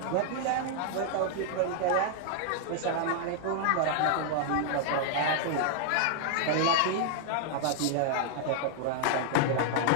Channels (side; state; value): both; different; correlation -0.01